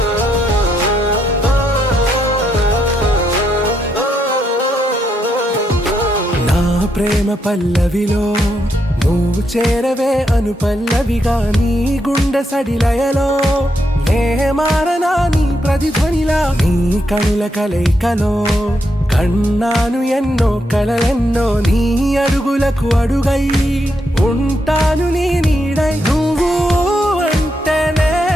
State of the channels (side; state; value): both; normal; correlation 0.80